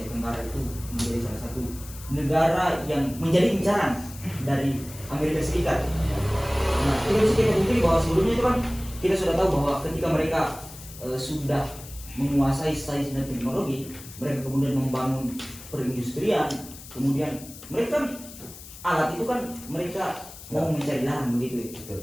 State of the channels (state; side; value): noise; left; hiss, 16 dB below the sound